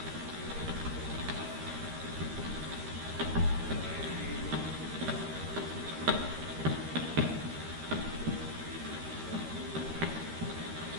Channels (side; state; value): left; late; 13 ms